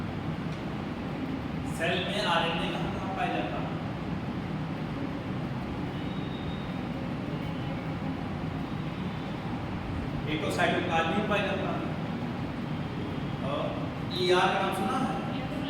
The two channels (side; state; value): both; identical; correlation 1.00